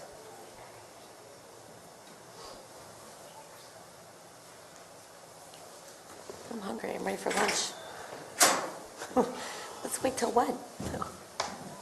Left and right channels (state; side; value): identical; both; correlation 1.00